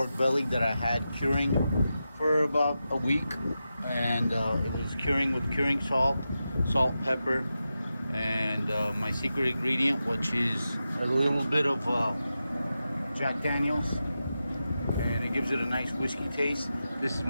belly that I had curing for about a week, and it was curing with curing salt, pepper, and my secret ingredient, which is a little bit of Jack Daniels, and it gives it a nice whiskey taste. This is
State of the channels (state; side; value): inverted; both; correlation -0.91